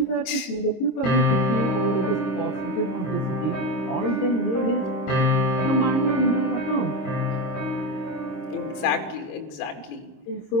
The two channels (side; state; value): right; late; 27 ms